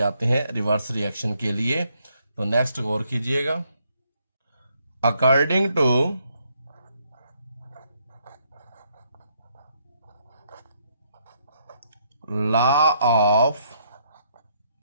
हैं रिवर्स रिएक्शन के लिए। तो नेक्स्ट गौर कीजिएगा, according to law of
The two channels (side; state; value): both; inverted; correlation -0.73